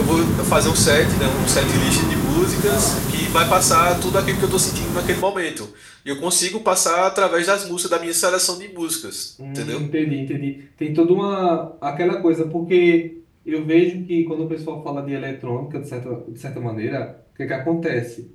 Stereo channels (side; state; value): both; identical; correlation 1.00